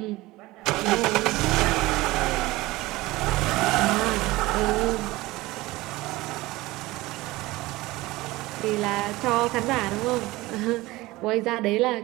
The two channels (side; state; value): left; quieter; 19.5 dB